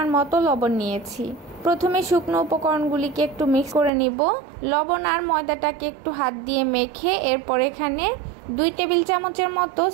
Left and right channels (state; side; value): drops out; left; at 3.9 s